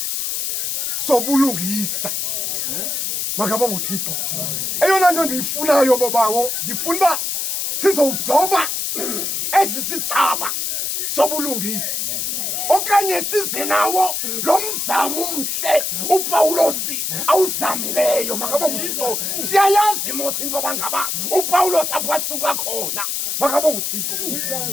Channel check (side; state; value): left; noise; hiss, 1 dB below the sound